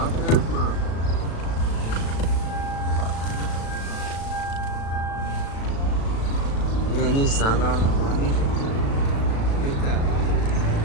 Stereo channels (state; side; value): late; right; 36 ms